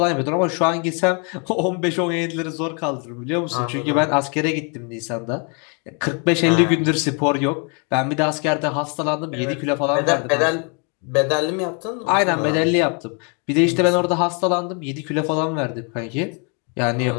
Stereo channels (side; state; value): right; quieter; 36.2 dB